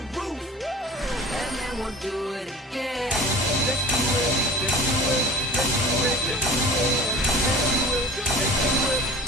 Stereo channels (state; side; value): normal; both; correlation 0.40